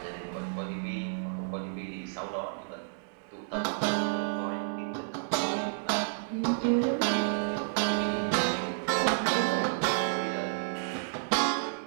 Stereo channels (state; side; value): silent; left; digital silence